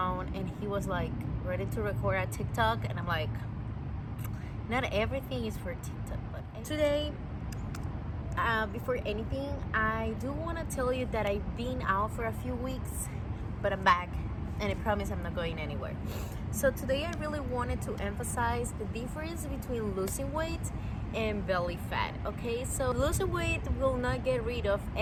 and he was like ready to record a TikTok, and I'm like, not everything is for TikTok. But today, before anything, I do want to tell you that I've been out for a few weeks, but I'm back, and I promise I'm not going anywhere. So today I really wanted to emphasize the difference between losing weight and belly fat. Okay, so losing weight will not get rid of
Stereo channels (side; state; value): both; identical; correlation 1.00